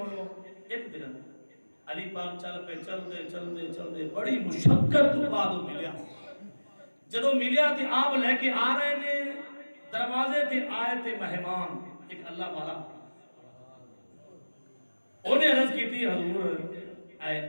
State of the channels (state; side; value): inverted; both; correlation -1.00